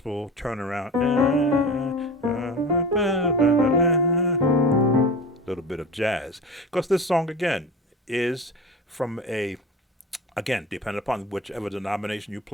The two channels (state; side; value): normal; both; correlation 0.32